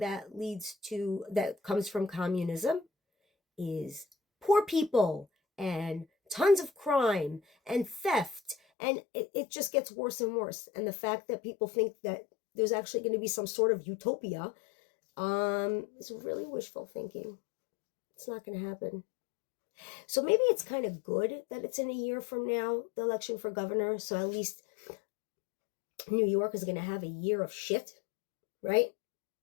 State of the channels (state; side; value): drops out; right; at 8.6 s